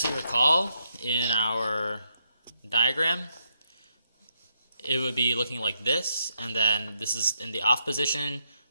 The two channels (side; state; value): both; inverted; correlation -0.79